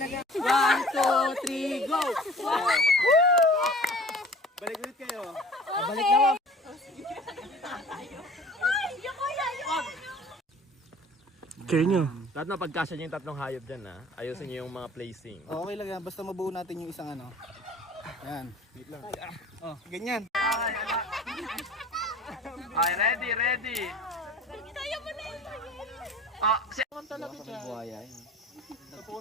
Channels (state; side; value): normal; both; correlation 0.46